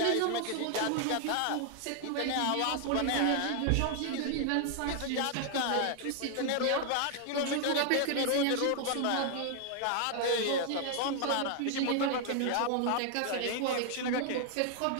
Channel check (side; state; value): both; different; correlation 0.00